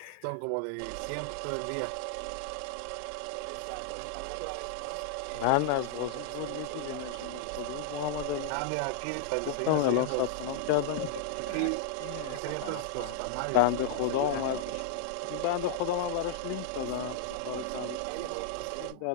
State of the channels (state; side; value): different; both; correlation -0.01